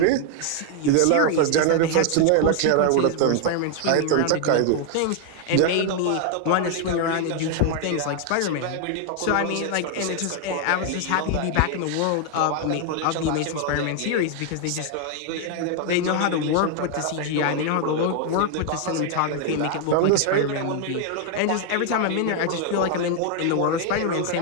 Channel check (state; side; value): different; both; correlation 0.00